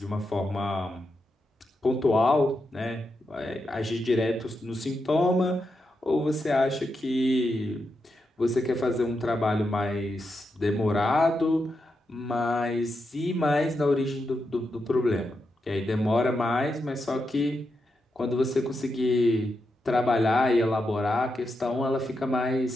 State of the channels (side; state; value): both; normal; correlation 0.86